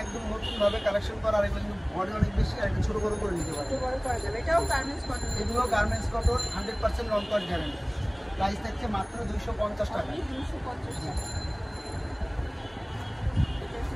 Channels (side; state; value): both; identical; correlation 1.00